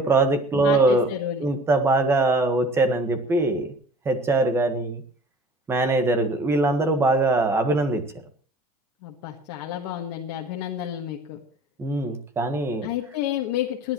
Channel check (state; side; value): normal; both; correlation 0.46